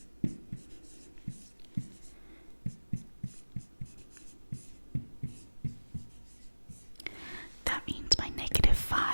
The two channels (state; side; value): inverted; both; correlation -1.00